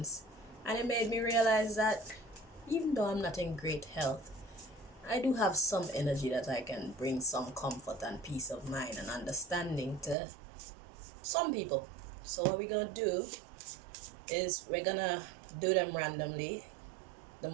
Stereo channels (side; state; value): left; drops out; at 10.2 s